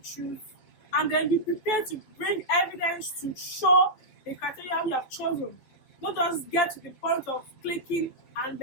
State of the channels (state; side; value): late; right; 12 ms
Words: and then be prepared to bring evidence to show the criteria you have chosen. Not just get to the point of clicking and